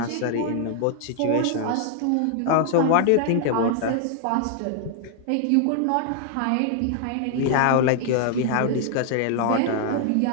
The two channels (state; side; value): different; both; correlation 0.00